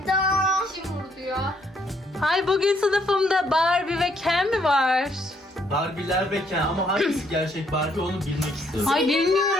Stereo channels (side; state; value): both; normal; correlation 0.70